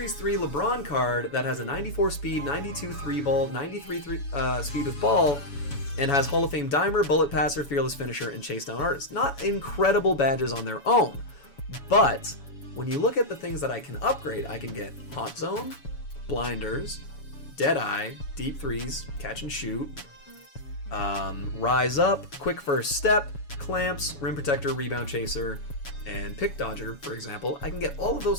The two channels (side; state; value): right; late; 7.1 ms